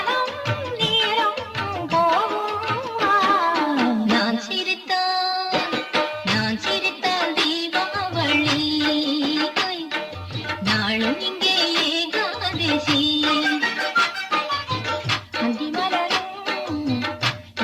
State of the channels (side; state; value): both; identical; correlation 1.00